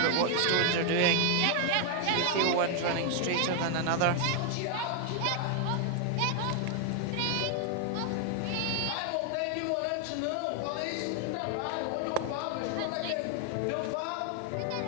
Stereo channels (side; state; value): both; different; correlation 0.00